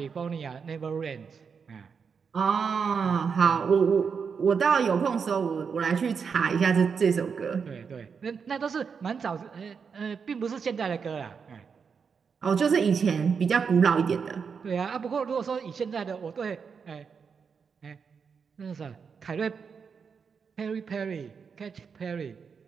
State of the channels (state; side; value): quieter; left; 6.0 dB